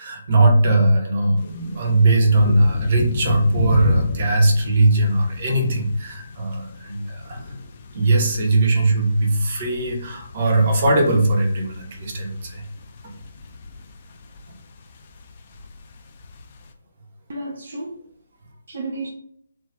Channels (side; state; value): both; inverted; correlation -0.80